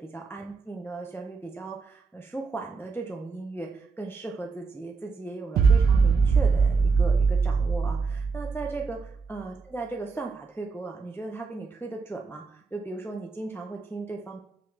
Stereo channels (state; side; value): quieter; left; 4.6 dB